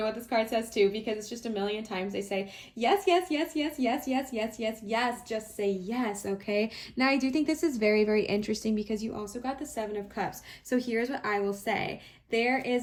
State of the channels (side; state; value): both; identical; correlation 1.00